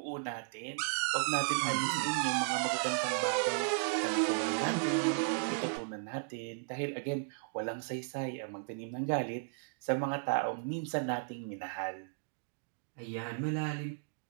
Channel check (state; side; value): silent; left; digital silence